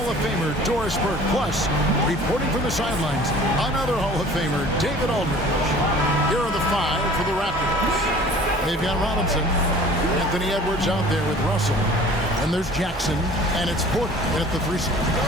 of Famer Doris Burke. Plus, reporting from the sidelines, another Hall of Famer, David Aldridge. Here are the five for the Raptors. They've got Robinson, Anthony Edwards out there with Russell. And there's Jackson, and it's Porter at the 3 spot.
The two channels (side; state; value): both; normal; correlation 0.47